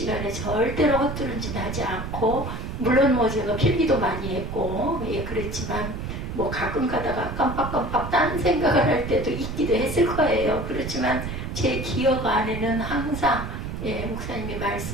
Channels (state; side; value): noise; right; rumble, 6 dB below the sound